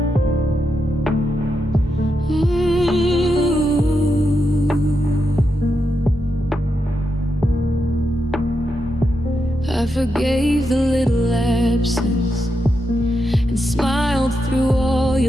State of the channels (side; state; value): both; normal; correlation 0.85